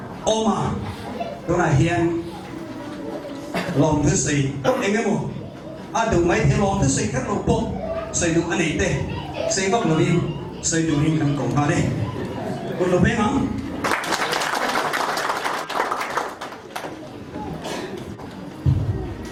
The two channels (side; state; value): both; identical; correlation 1.00